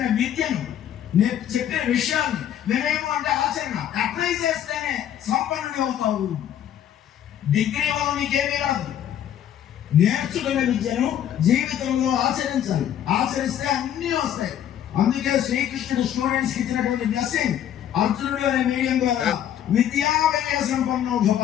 విద్యను, చెప్పిన విషయాన్ని, వినయము అంటే ఆచరణ, అప్లై చేస్తేనే సంపన్నుడి అవుతావు. డిగ్రీ వల్ల నీకేమీ రాదు. నేర్చుకున్న విద్యను జీవితంలో ఆచరించాలి. ఆచరిస్తే అన్నీ వస్తాయి. అందుకే శ్రీకృష్ణుడు స్టూడెంట్స్ కి ఇచ్చినటువంటి బ్లెస్సింగ్, అర్జునుడు అనే మీడియం ద్వారా విద్యా వినయ సంపన్నో భవ.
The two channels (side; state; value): right; quieter; 10.5 dB